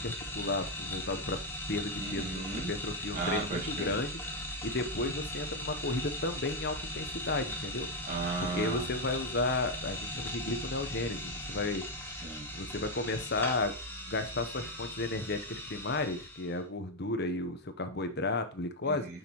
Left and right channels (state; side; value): normal; both; correlation 0.04